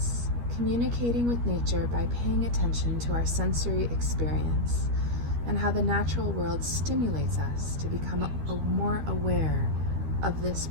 communicating with nature by paying attention to our sensory experience and how the natural world stimulates us to become more aware of this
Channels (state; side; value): late; left; 13 ms